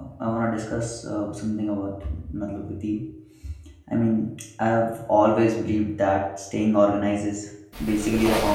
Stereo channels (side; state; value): both; identical; correlation 1.00